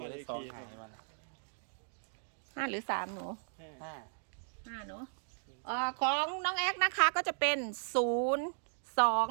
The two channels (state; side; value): silent; left; digital silence